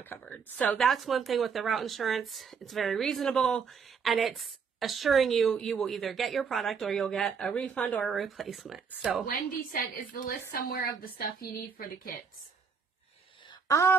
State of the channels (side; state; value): left; quieter; 6.0 dB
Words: covered. So that's one thing with the route insurance. It's very reasonable and it's assuring you will either get your product or you'll get a refund or a replacement. So Wendy said, is the list somewhere of the stuff you need for the kits?